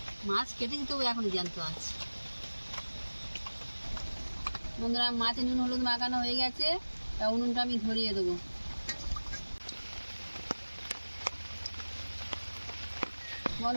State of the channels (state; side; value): inverted; both; correlation -1.00